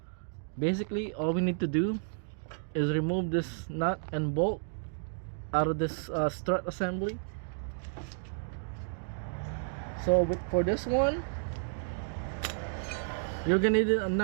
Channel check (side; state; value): left; silent; digital silence